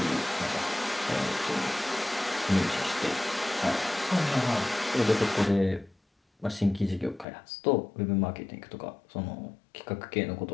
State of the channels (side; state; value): right; drops out; at 7.2 s